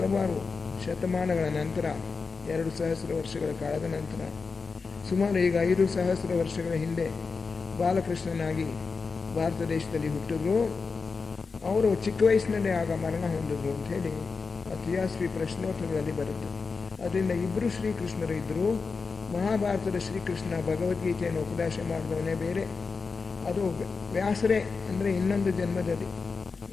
ಶತಮಾನಗಳ ನಂತರ, 2,000 ವರ್ಷಗಳ ಕಾಲದ ನಂತರ. ಸುಮಾರು ಈಗ 5,000 ವರ್ಷಗಳ ಹಿಂದೆ ಬಾಲಕೃಷ್ಣನಾಗಿ ಭಾರತ ದೇಶದಲ್ಲಿ ಹುಟ್ಟಿದ್ರು. ಅವರು ಚಿಕ್ಕ ವಯಸ್ಸಿನಲ್ಲೇ ಆಗ ಮರಣ ಹೊಂದಿದ್ರು ಅಂತ ಹೇಳಿ ತಿಯಾಸ್ವಿ ಪ್ರಶ್ನೋತ್ತರಗಳಲ್ಲಿ ಬರುತ್ತೆ. ಅದರಿಂದ ಇಬ್ಬರು ಶ್ರೀಕೃಷ್ಣರು ಇದ್ದರು. ಮಹಾಭಾರತದ ಶ್ರೀಕೃಷ್ಣ ಭಗವದ್ಗೀತೆಯನ್ನು ಉಪದೇಶ ಮಾಡಿದವನೇ ಬೇರೆ, ಅದು ವ್ಯಾಸರೇ, ಅಂದರೆ ಇನ್ನೊಂದು ಜನ್ಮದಲ್ಲಿ,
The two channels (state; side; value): quieter; right; 4.7 dB